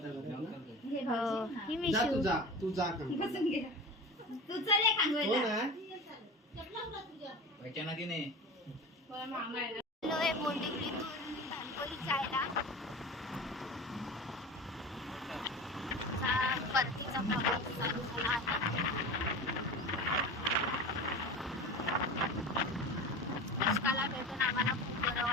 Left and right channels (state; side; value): normal; both; correlation 0.32